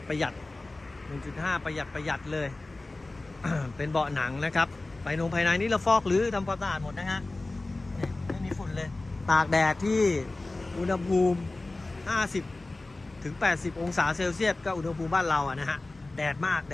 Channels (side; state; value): right; quieter; 3.0 dB